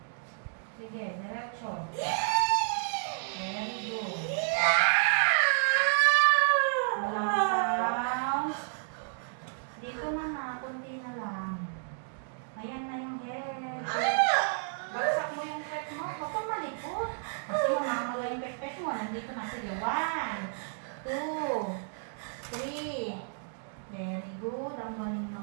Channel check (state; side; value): silent; left; digital silence